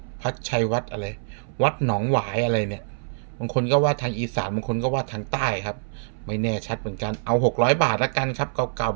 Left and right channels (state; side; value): silent; left; 60 dB below the other